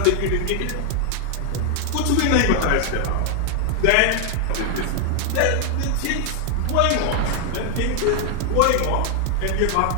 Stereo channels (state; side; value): different; both; correlation 0.00